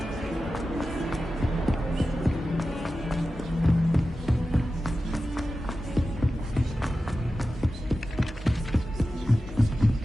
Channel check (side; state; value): both; normal; correlation 0.93